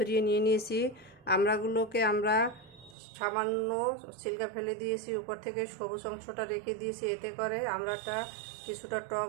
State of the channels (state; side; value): drops out; left; at 3.0 s